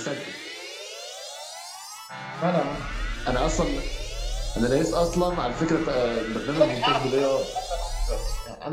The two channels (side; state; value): both; identical; correlation 1.00